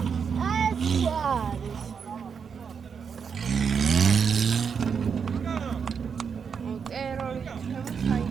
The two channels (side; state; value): left; quieter; 6.5 dB